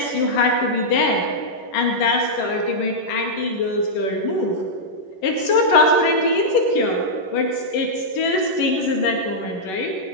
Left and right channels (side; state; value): right; late; 11 ms